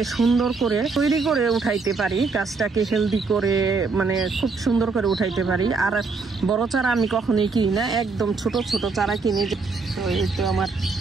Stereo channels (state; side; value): quieter; left; 4.4 dB